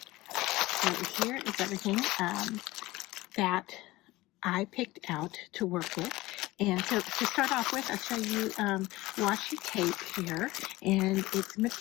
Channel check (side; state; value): right; quieter; 19.1 dB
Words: so here is everything that I picked out to work with. And so to start off with, I'll show you washi tape here, and it's